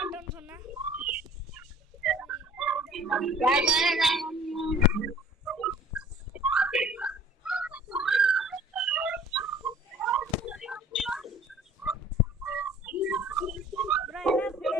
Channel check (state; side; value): normal; both; correlation 0.50